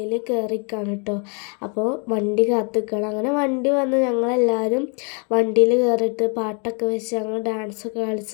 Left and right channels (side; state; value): right; quieter; 37.5 dB